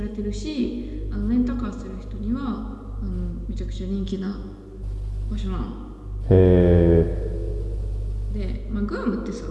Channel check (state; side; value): identical; both; correlation 1.00